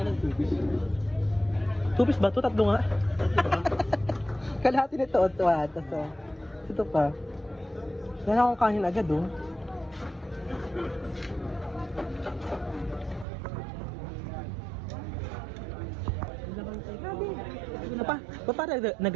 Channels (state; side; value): drops out; left; at 13.2 s